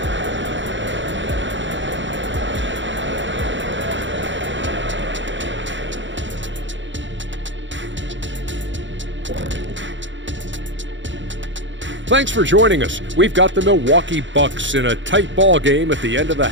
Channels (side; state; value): left; late; 0.54 ms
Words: Thanks for joining us. We've got the Milwaukee Bucks in a tight ball game at the end of the